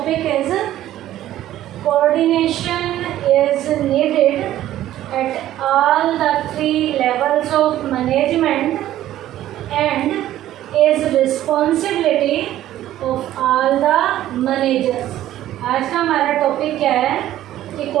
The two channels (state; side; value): quieter; left; 13.3 dB